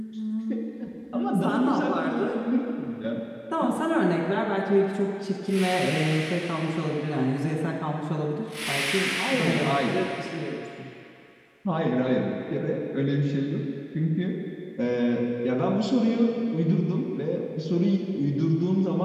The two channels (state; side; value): identical; both; correlation 1.00